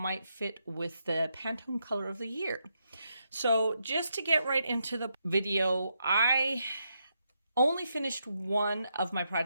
fit with the Pantone color of the year. So just to get right into the video, I only finished one of my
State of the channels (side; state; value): both; inverted; correlation -0.81